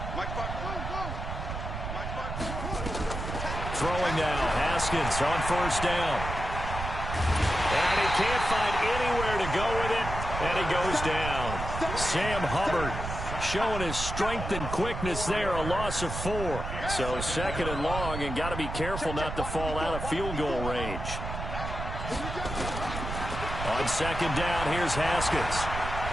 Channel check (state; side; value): noise; right; rumble, 6 dB below the sound